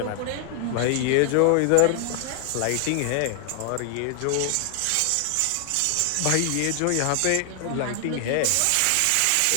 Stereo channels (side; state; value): both; different; correlation 0.00